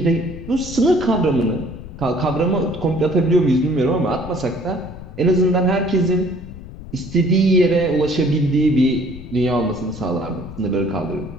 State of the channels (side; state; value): left; noise; rumble, 14 dB below the sound